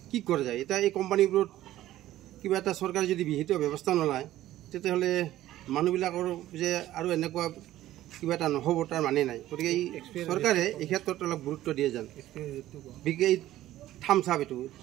কি কৰা যায়, এতিয়া এই কোম্পানীবোৰত কিবা এটা চৰকাৰে যদি বিহিত ব্যৱস্থা নলয়, তেতিয়াহ'লে মানুহবিলাকৰ যে আৰু এনেকুৱা কিবা এটা নহ'ব তাৰ মানে নাই। গতিকে এই চৰকাৰে এই ক্ষেত্ৰত অলপ গুৰুত্ব দিয়ে যেন। এই থামছ আপ এইটো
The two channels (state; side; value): quieter; left; 14.3 dB